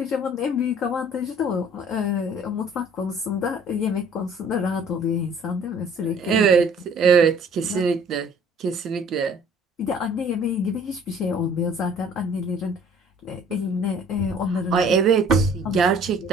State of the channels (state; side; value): normal; both; correlation 0.54